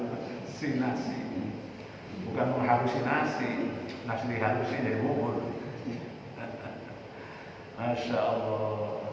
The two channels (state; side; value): identical; both; correlation 1.00